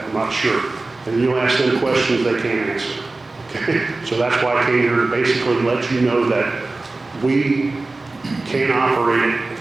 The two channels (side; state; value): left; quieter; 3.3 dB